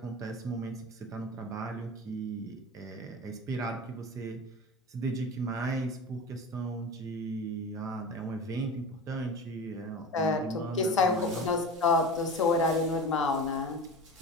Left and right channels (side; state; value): both; normal; correlation 0.32